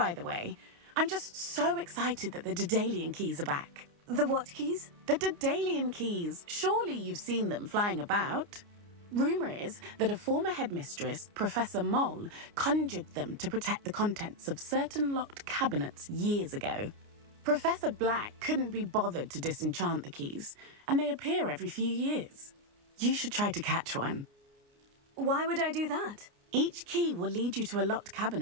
the way. I'm just so excited that the Daedalian keys are back. The what keys? The Daedalian keys. Surely you've seen them flying about. Rumour is that a former headmistress, Professor Moll, conjured them to protect the contents of certain locked cabinets years ago. Professor Black couldn't be bothered to disenchant the keys, and they appear every few years. You should try to catch one. Why would I do that? Each key will lead you to a locked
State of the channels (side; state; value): left; late; 29 ms